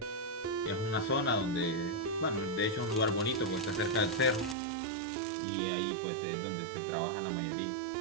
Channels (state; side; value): drops out; left; at 4.5 s